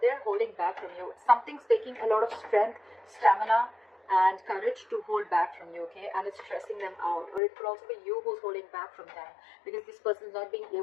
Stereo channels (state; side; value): drops out; right; at 7.4 s